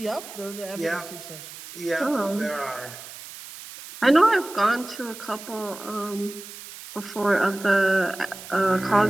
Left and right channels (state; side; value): noise; right; hiss, 14 dB below the sound